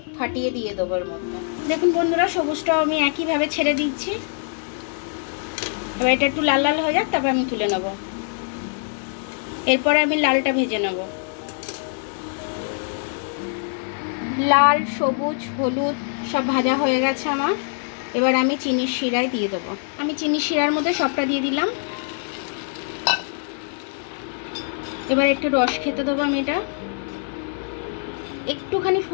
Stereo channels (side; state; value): right; silent; 63 dB below the other